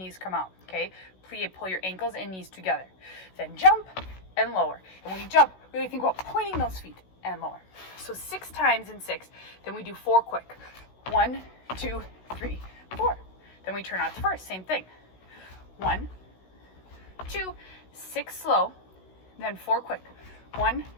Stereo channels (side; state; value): right; late; 16 ms